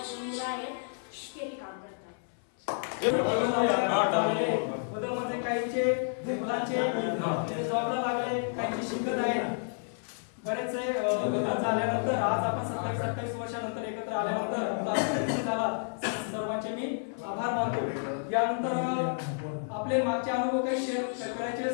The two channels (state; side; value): silent; right; 57 dB below the other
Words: मुलं आहेत, शेती काम करतात. बदल म्हणजे काहींचे मुलांचे जॉबला लागले, काहींचे शिकत आहेत. बरेचसे लग्न झाल्यानंतर आज आपण 27-28 वर्षानंतर एकत्र आल्यानंतर आपला झाला. सर्वांचे मी आभार मानतो. यानंतर आपले मागचे अनुभव काही शेअर करायचे